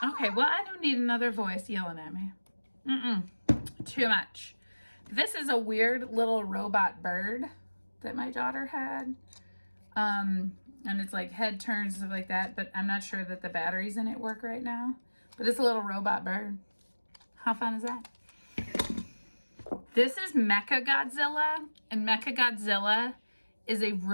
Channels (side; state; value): both; inverted; correlation -1.00